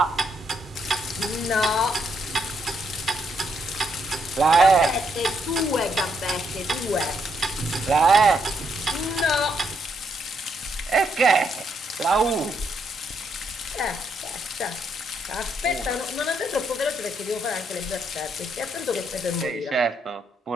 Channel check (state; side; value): normal; both; correlation 0.76